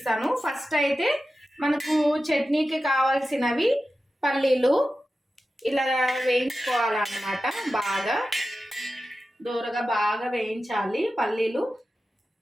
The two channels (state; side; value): normal; both; correlation 0.93